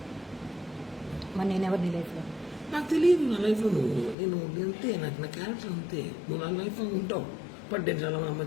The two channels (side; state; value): right; drops out; at 4.2 s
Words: మరి నేను ఎవరు నీ లైఫ్లో? నాకు తెలియదు నా లైఫ్లో నేను అంతే, నాకు నా క్యారెక్టర్ అంతే. నువ్వు నా లైఫ్లో ఉంటావు, బట్ నేను చాలా మంది